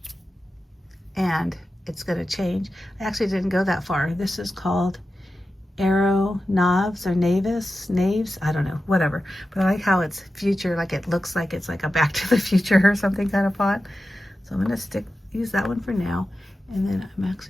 and it's going to change. I actually didn't go that far. This is called Arrow Naves or Naves, I don't know, whatever. But I like how it's future, like it looks like it's like a Back to the Future or something kind of font. So I'm going to use that one for now. And then I'm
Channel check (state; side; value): normal; both; correlation 0.92